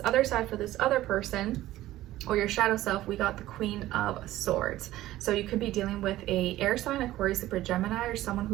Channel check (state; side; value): quieter; left; 15.3 dB